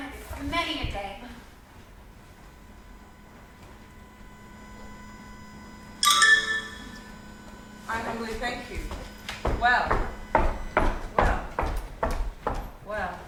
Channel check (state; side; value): identical; both; correlation 1.00